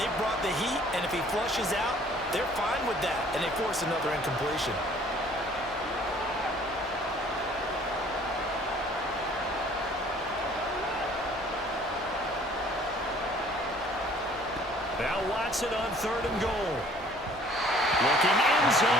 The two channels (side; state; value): both; normal; correlation 0.55